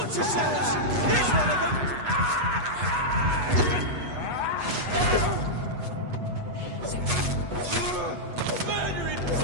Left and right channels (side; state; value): left; late; 8.2 ms